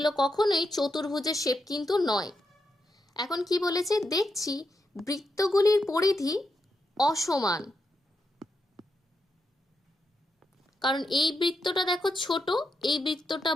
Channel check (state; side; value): normal; both; correlation 0.84